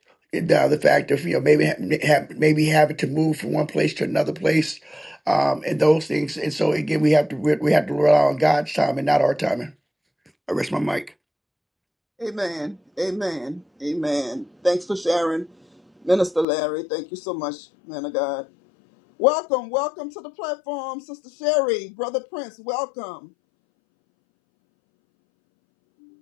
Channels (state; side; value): drops out; right; at 16.4 s